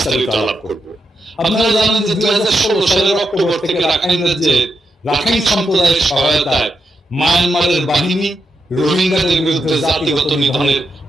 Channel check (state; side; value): normal; both; correlation 0.84